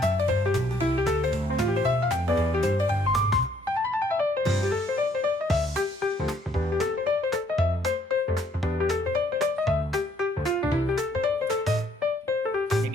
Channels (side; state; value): both; normal; correlation 0.66